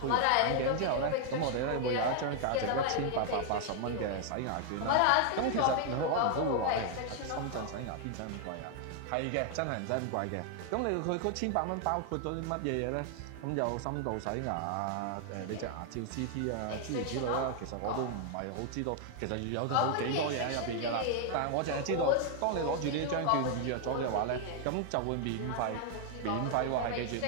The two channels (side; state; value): both; different; correlation 0.00